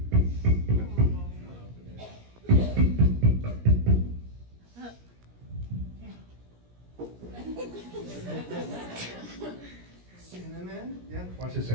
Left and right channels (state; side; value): late; left; 17 ms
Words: Cinnamon? Yeah. Watch this